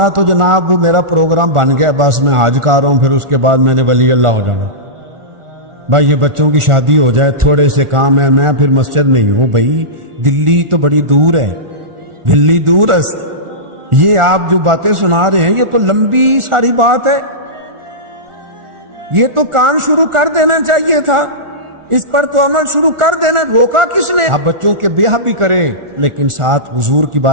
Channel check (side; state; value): left; late; 1.4 ms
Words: تو جناب وہ میرا پروگرام بن گیا، بس میں حج کر رہا ہوں، پھر اس کے بعد میں نے ولی اللہ ہو جانا۔ بھائی یہ بچوں کی شادی ہو جائے، تھوڑے سے کام ہے، میں پھر مسجد نہیں ہوں۔ بھائی دلی تو بڑی دور ہے، دلی دور ہے۔ یہ آپ جو باتیں سنا رہے ہیں یہ تو لمبی ساری بات ہے، یہ تو کام شروع کر دینا چاہیے تھا، اس پر تو عمل شروع کر دینا، روکا کس نے؟ آپ بچوں کے بیاہ بھی کریں لیکن ساتھ حضور کی